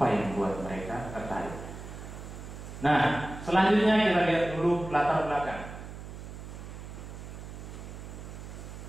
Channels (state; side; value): noise; right; hum, 11 dB below the sound